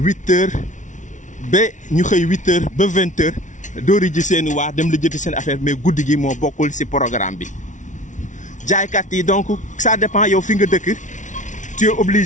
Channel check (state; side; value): late; right; 0.37 ms